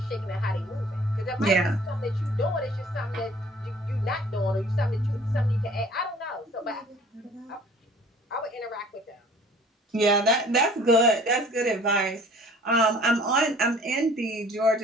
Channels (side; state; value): both; normal; correlation 0.51